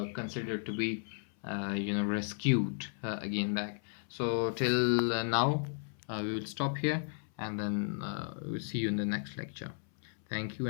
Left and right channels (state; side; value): silent; right; 55 dB below the other